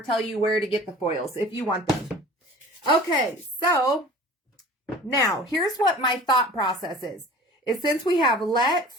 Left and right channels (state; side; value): normal; both; correlation 0.43